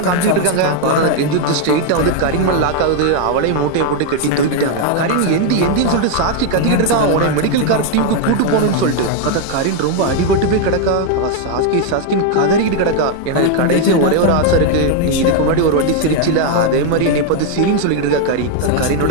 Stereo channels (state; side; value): different; both; correlation 0.01